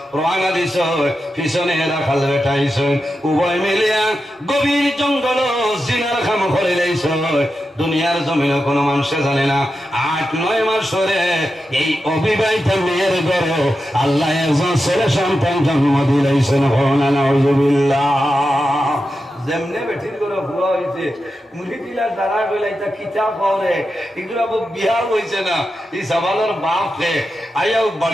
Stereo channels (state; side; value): normal; both; correlation 0.89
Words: রওনা দিছ পিছনে রাখাল বেটাইছ উভয় মিলিয়া গভীর জঙ্গল জিনার খাম করে লাইছ দুনিয়ার জমিনে কোনো মানুষে জানে না 8-9 মাস ধরে এই অবিবাহিতা মেয়ের ঘরে আল্লাহ একজন ছেলে সন্তান জন্ম দিলাইছেন নাউযুবিল্লাহ যেমনে বেঠির করে ভুয়া হয়েছে মুড়ি দিলার দ্বারা গেলে এটা কিতাব হরে এগুলো বিহার হয়েছে না এই সবালের বাপ রে আইয়াও